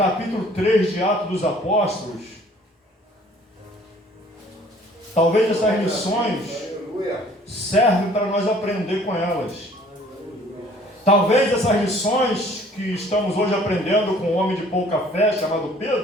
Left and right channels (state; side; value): normal; both; correlation 0.55